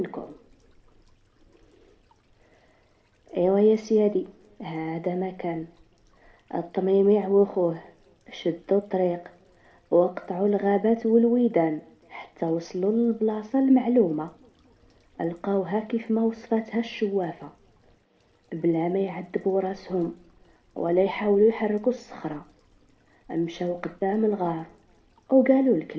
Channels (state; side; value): identical; both; correlation 1.00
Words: ايوا يا سيادي، هذا مكان الطميمع وخوه شدوا الطريق وقطعوا الغابات والويدان حتى وصلوا للبلاصة المعلومة. لقاوها كيف ما وصفتها الشوافة، بلا ما يعذبوا راسهم ولا يحاولوا يحركوا الصخرة. مشاو قدام الغار وقالوا